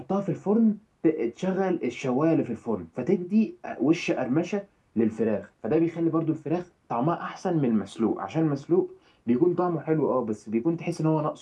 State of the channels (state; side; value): identical; both; correlation 1.00